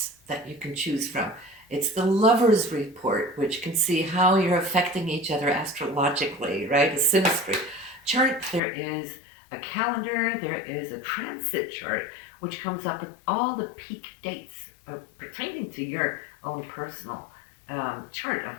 that you can choose from. It's the Lover's Report, which can see how you're affecting each other astrologically, right? A synastry chart. There is a calendar, there is a transit chart, which comes up with all the peak dates pertaining to your own personal chart,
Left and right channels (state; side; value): drops out; right; at 8.6 s